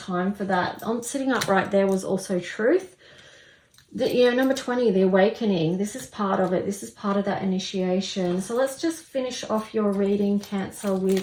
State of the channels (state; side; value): identical; both; correlation 1.00